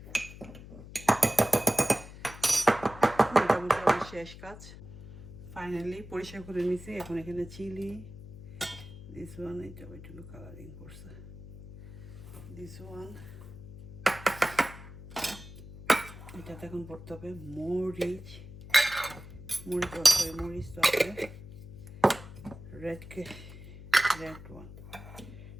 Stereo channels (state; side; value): noise; left; hum, 15 dB below the sound